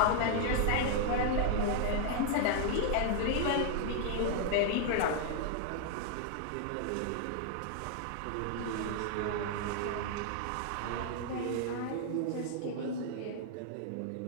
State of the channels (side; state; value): both; different; correlation 0.00